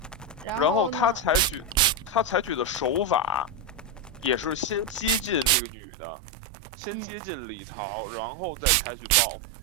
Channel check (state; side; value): drops out; left; at 5.6 s